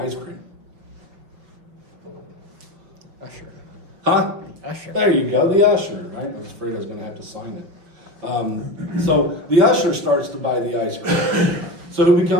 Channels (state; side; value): late; left; 5.9 ms